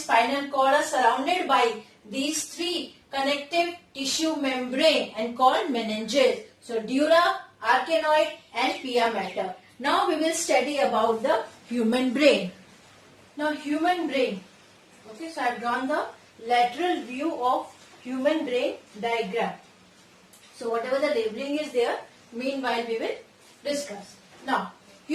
cord are surrounded by these three connective tissue membrane and called meninges. So dura, arachnoid and pia mater. Now we will study about the human brain. Now human brain. Okay, so I have drawn the lateral view of human brain diagram. So whatever the labeling is there, meanwhile we will discuss. Now,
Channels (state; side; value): identical; both; correlation 1.00